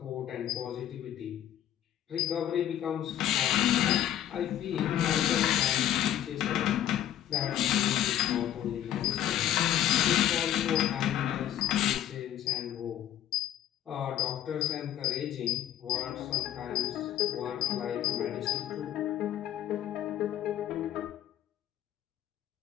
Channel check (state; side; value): quieter; right; 11.6 dB